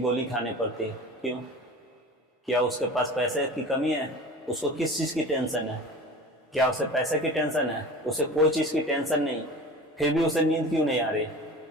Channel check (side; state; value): both; normal; correlation 0.36